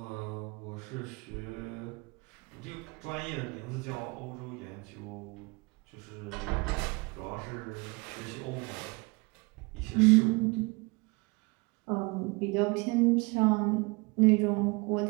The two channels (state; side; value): quieter; left; 27.4 dB